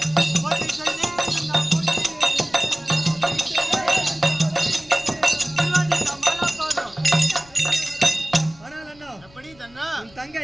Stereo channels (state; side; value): noise; left; rumble, 26 dB below the sound